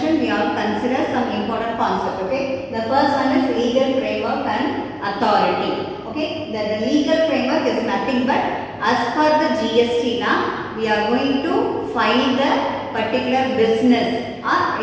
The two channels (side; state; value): both; identical; correlation 1.00